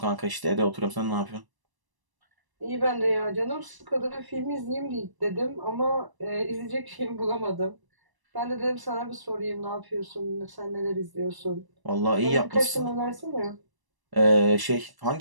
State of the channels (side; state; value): left; late; 1.0 ms